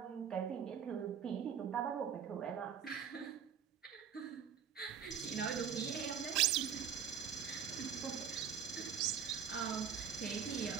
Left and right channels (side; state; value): left; quieter; 7.9 dB